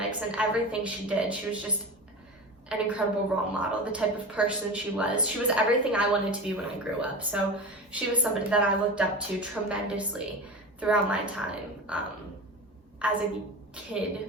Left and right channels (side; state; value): both; normal; correlation 0.28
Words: and everything she did. She was just an incredible role model, the type of person she was. She was everything I wanted to be when I grew up. So she was somebody that I looked up to tremendously throughout my time as a